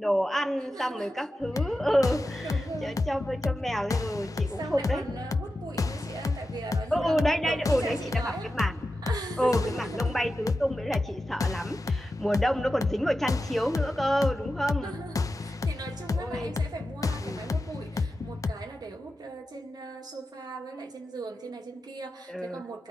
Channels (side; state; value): both; normal; correlation 0.91